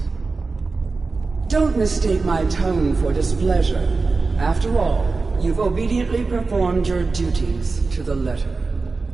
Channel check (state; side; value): quieter; left; 4.0 dB